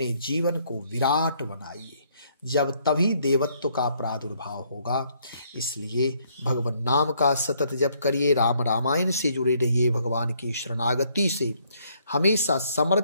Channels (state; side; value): inverted; both; correlation -0.68